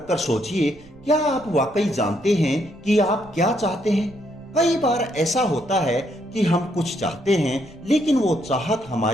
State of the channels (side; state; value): right; noise; rumble, 24 dB below the sound